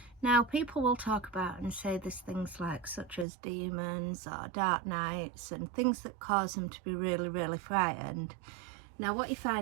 Now, people will talk about and say there's things like such as demons or dark nights and things that cause them to be really frightened. Now, what you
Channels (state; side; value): drops out; left; at 3.2 s